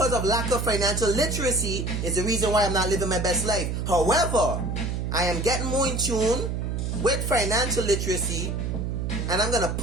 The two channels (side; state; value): right; noise; hum, 2 dB below the sound